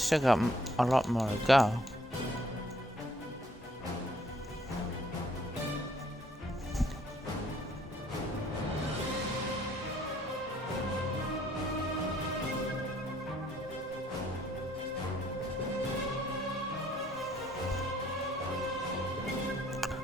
got a lot more to go.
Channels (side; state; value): both; normal; correlation 0.64